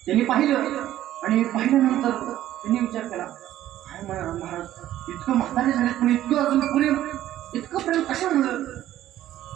त्यांनी पाहिलं आणि पाहिल्यानंतर त्यांनी विचार केला, काय महाराज इतकं म्हातारे झाले पण इतकं अजून इतकं प्रेम कशामुळं.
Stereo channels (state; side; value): quieter; left; 13.1 dB